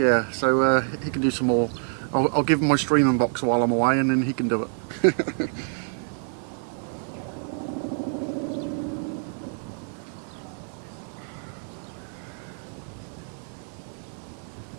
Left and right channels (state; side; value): silent; left; 56 dB below the other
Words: so he can do some more I'll give him my streaming box while I'm away, and then he can do it.